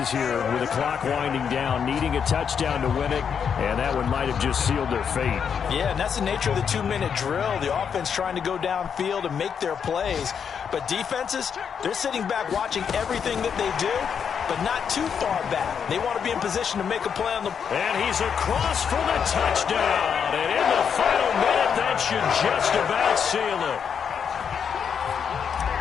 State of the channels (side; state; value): right; quieter; 7.2 dB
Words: here with the clock winding down, needing a touchdown to win it, and that one might have just sealed their fate. Yeah, and that's the nature of the 2-minute drill. The offense trying to go downfield and make their plays. But defenses, they're sitting back watching everything that they do, but not too far back. They want to be in position to make a play on the... And he's across for the touchdown. And in the final minute, that should just about seal it.